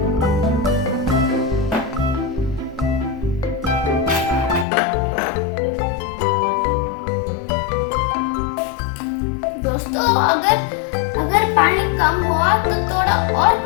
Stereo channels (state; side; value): drops out; right; at 4.7 s